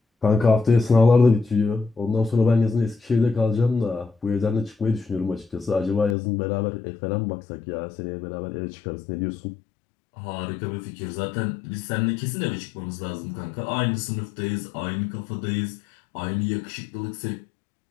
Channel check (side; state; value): right; drops out; at 6.2 s